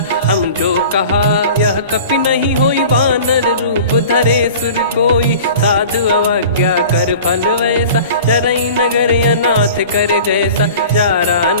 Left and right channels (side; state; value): both; inverted; correlation -0.41